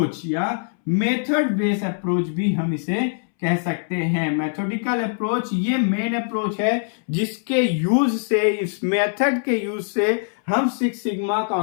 या मेथड बेस्ड अप्रोच भी हम इसे कह सकते हैं। मेथोडिकल अप्रोच ये मेन अप्रोच है जिसके यूज से, इस मेथड के यूज से हम सिक्स सिग्मा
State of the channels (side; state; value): right; silent; 64 dB below the other